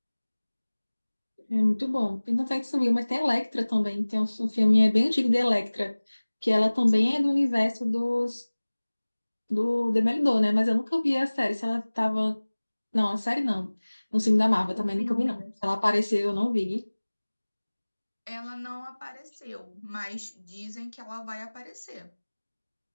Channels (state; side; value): inverted; both; correlation -1.00